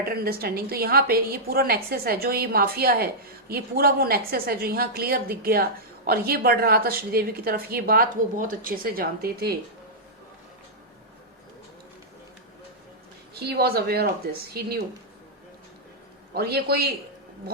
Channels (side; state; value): both; normal; correlation -0.10